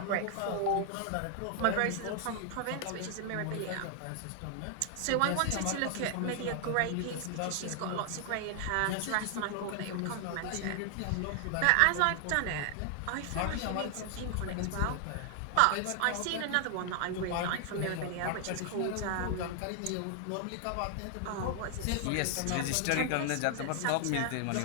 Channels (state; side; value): different; both; correlation 0.00